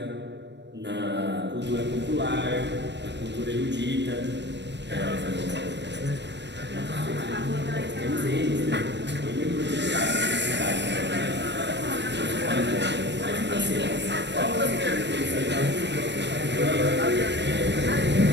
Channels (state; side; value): late; left; 0.51 ms